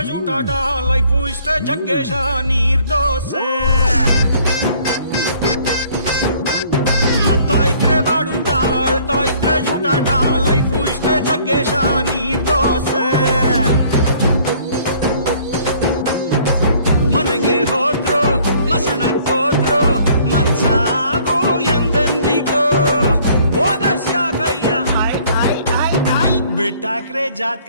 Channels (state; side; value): inverted; both; correlation -0.58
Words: ಜೂಟಾಟ ಲೈಫು ಇಷ್ಟೇ ಜಗ್ಗೇಶ ನೀರ್ ದೋಸೆ ನಗ್ತಾ ಇದ್ರೆ ಬಾಡೂಟ ಆಡ್ತಾ ಇದ್ರೆ ಜೂಟಾಟ ಲೈಫು ಇಷ್ಟೇ ಜಗ್ಗೇಶ ನೀರ್ ದೋಸೆ ಮನೆಗೆ ಹೋದ್ರು ಮಸಣಕ್ಕೋದ್ರು ಮನ್ಸಾಗು ಎಂದೆಂದಿಗೂ ಓದಸ್ಯಾಕಯ್ಯ ಬಿಟ್ಟಾಕ್ರೆ